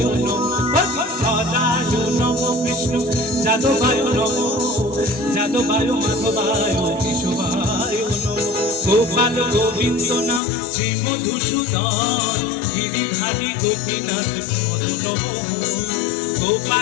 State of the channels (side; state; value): right; drops out; at 10.4 s